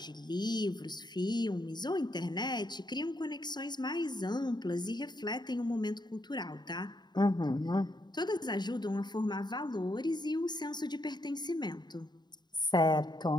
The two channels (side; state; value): right; late; 0.21 ms